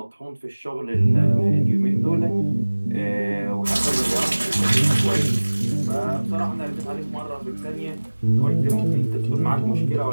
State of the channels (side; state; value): both; inverted; correlation -1.00